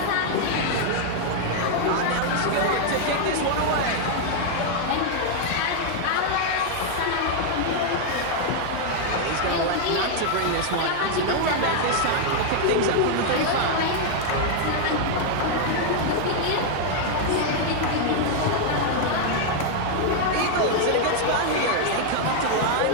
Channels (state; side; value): different; both; correlation 0.00